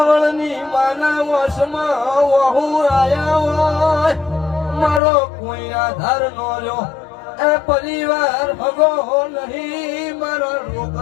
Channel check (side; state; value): right; drops out; at 5.0 s